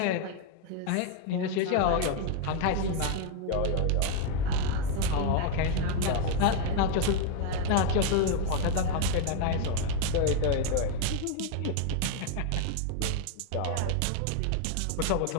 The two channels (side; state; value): both; different; correlation 0.01